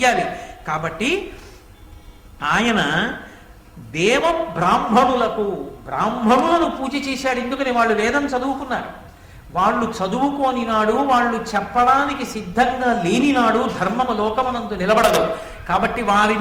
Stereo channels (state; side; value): identical; both; correlation 1.00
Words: కాబట్టి ఆయన దేవ బ్రాహ్మణులను పూజ చేశాడు. ఎందుకని? వాళ్ళు వేదం చదువుకున్నారు. వాళ్ళు చదువుకోని నాడు, వాళ్ళు చెప్పడానికి సిద్ధంగా లేని నాడు ధర్మము లోకమనందు నిలబడదు. కాబట్టి